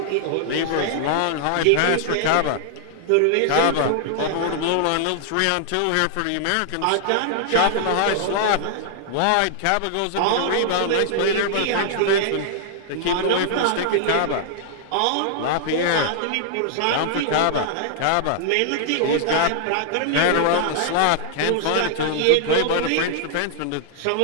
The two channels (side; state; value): both; different; correlation 0.00